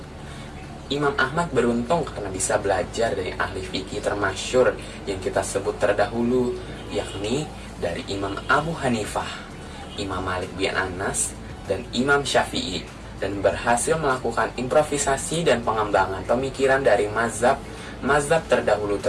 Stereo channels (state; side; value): identical; both; correlation 1.00